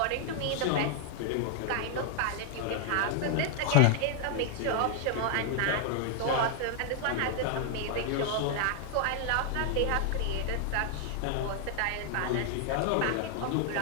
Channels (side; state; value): both; different; correlation 0.00